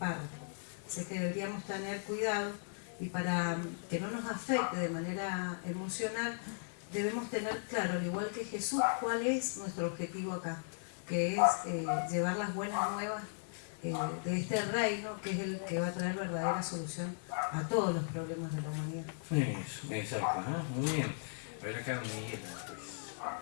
Así que deberíamos tener cuidado y para que no nos afecte de manera emocional, debemos tener claro, al igual que Jesús, cuál es nuestro objetivo acá, que es llevar las buenas nuevas de este reino, que es el que va a traer verdadera solución a todos los problemas de la humanidad. Eso, exacto, ¿no? Muy bien. A ver acá, Miguel.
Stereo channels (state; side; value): silent; right; digital silence